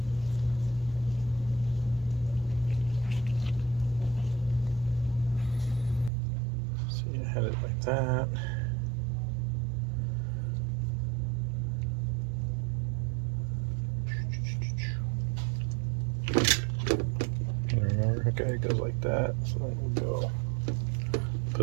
So you had it like that. Okay, it goes like that. So then we'll go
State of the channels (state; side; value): drops out; left; at 6.1 s